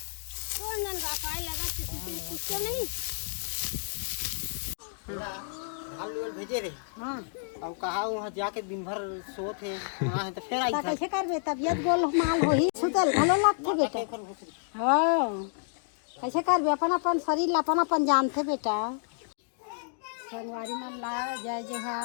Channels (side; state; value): right; silent; digital silence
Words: नन पाए लगा कुछ नहीं। हाल भेजे रे। हाँ अब कहा वहाँ जाके दिन भर सोत है वहाँ है तो फिर आई ता था कैसे करबे तबियत गोल माल होही सुतल भलो लागथे बेटा। हाँ कैसे करबे अपन अपन शरीर अपन अपन जानथे बेटा। संगवारी मन ला जय